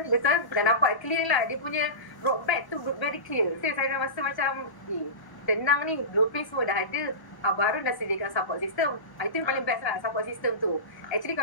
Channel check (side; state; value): right; late; 1.1 ms